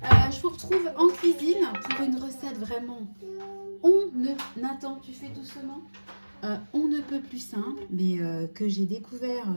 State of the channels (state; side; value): inverted; both; correlation -1.00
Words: Je vous retrouve en cuisine pour une recette vraiment Nathan, tu fais doucement. On ne peut plus simple, mais que j'ai découvert.